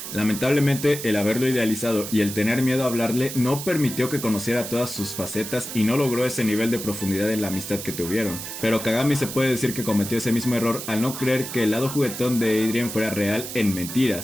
Lamentablemente, el haberlo idealizado y el tener miedo a hablarle no permitió que conociera todas sus facetas y no logró ese nivel de profundidad en la amistad que tuvieron. Pero Kagami se puede decir que cometió ese mismo error al no creer que el lado juguetón de Adrien fuera real en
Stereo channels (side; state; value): right; noise; hiss, 8 dB below the sound